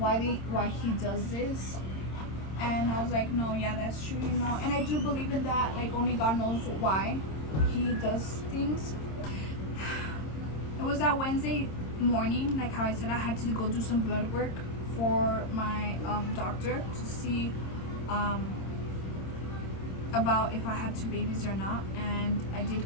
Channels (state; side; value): late; right; 26 ms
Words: he does this. And I was like, no, yeah, that's true, you know, and I do believe in that, like, only God knows why he does things. It was that Wednesday morning, like how I said, I had to go do some blood work for my doctor to see about if I had two babies or not. And I